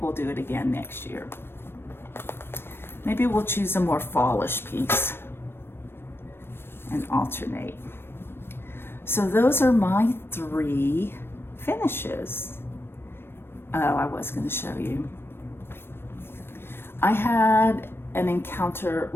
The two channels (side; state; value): right; late; 0.11 ms